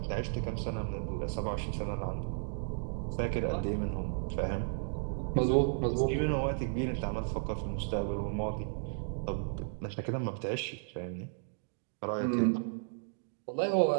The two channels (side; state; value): left; silent; digital silence